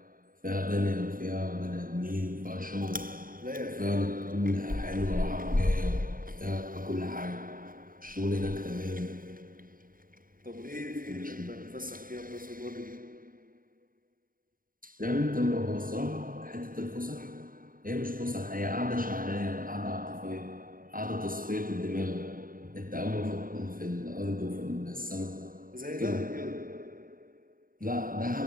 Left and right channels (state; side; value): late; left; 0.41 ms